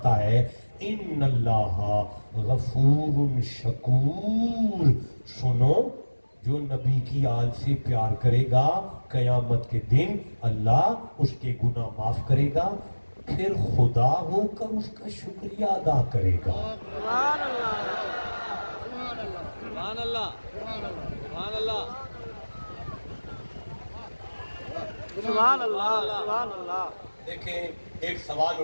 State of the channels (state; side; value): inverted; both; correlation -1.00